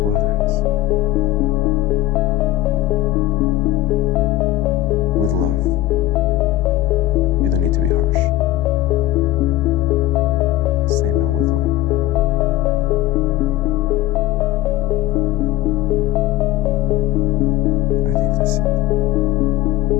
others. With love. You don't need to be harsh. Say no with love. I think that's it.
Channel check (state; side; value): quieter; right; 15.4 dB